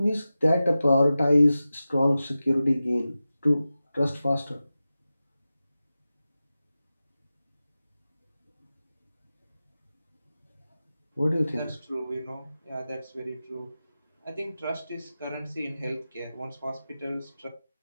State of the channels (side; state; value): both; inverted; correlation -0.94